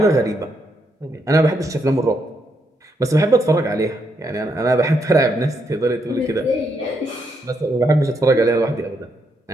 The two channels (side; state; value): both; normal; correlation 0.78